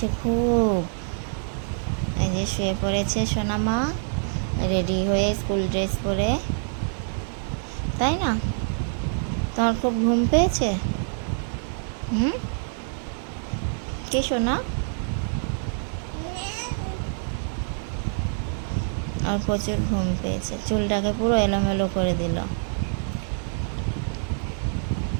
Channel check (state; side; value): silent; left; digital silence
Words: খুব, এই যে শুয়ে পড়েছে সোনামা রেডি হয়ে স্কুল ড্রেস পরে, তাই না? তোমার খুব ঘুম পেয়েছে? কে সোনা? আর প্রচুর ঘুম পেয়েছে, চুলটাকে পুরো এলোমেলো করে দিল।